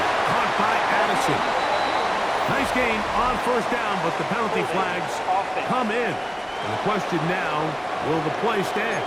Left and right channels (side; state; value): both; identical; correlation 1.00